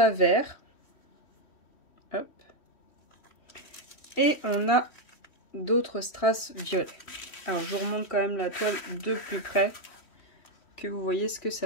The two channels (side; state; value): right; late; 3.1 ms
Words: verts. Hop. Et on a d'autres strass violets. Alors, je vous remonte quand même la toile de plus près, que vous voyez ce que